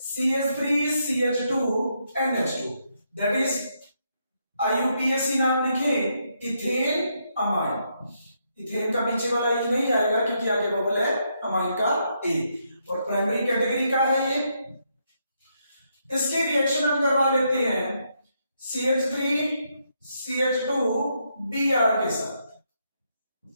CH3CH2NH2, दैट इज IUPAC नाम लिखे, इथेन अमाइन। इथेन का पीछे वाला ई नहीं आएगा क्योंकि आगे बबल है अमाइन का ए, और प्राइमरी कैटेगरी का है ये। इसके रिएक्शन हम करवा लेते हैं CH3CH2Br के साथ।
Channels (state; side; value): inverted; both; correlation -0.78